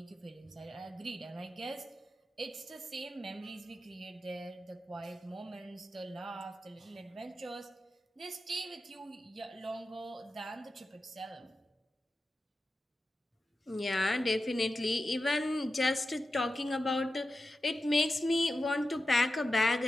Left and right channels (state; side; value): normal; both; correlation 0.91